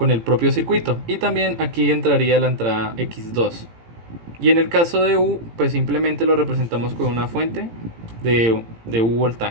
propio circuito. Y también aquí entraría la entrada x2. Y en el caso de U, pues simplemente lo representamos con una fuente de U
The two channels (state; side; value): late; left; 18 ms